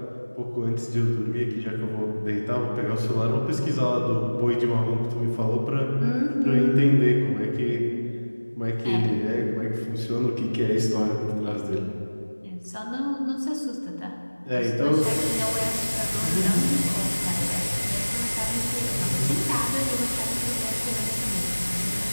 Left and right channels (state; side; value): inverted; both; correlation -1.00